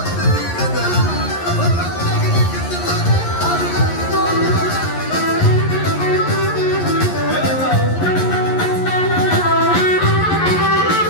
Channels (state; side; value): late; right; 11 ms